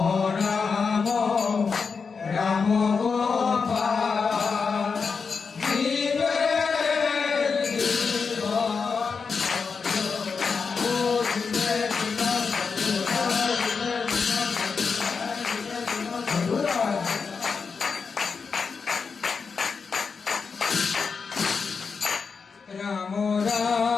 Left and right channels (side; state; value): right; quieter; 5.3 dB